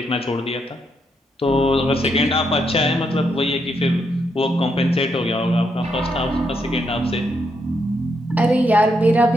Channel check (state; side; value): normal; both; correlation 0.79